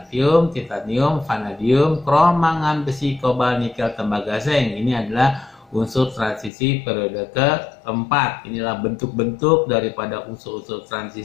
titanium, vanadium, krom, mangan, besi, kobalt, nikel, tembaga, zinc. Ini adalah unsur transisi periode keempat. Inilah bentuk-bentuk daripada unsur-unsur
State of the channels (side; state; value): right; drops out; at 6.5 s